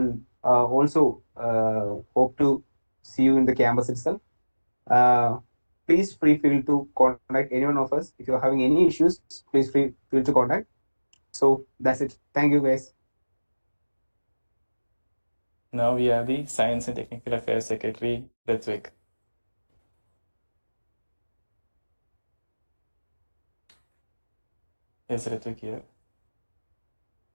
also hope to see you in the campus itself. Please feel free to contact any one of us if you're having any issues. Please feel to contact. So that's it. Thank you, guys. Now we have the science and technical affairs secretary, Ritvik. Is Ritvik here?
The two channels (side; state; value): both; inverted; correlation -1.00